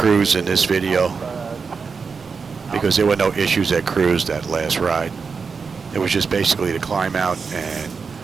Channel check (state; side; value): quieter; left; 5.2 dB